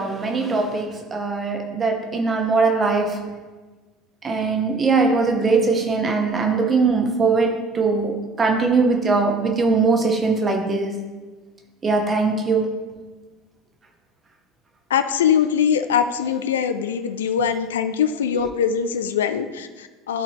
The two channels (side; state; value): both; normal; correlation 0.32